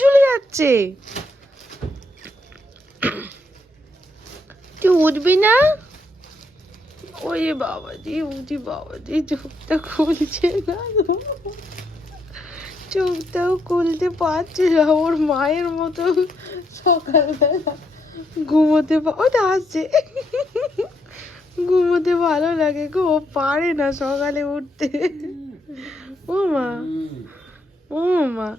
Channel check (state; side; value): normal; both; correlation 0.75